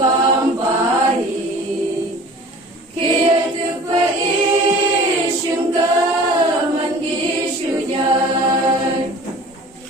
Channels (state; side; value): normal; both; correlation 0.44